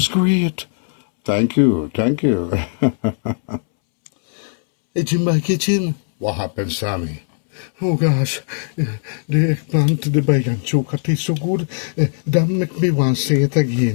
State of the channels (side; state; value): right; silent; 67 dB below the other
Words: great. Thank you. Hey, Jim, my kitchen. What happened, Sammy? Oh gosh, the eggplant, the Baighan Choka tastes so good. That make me want to say it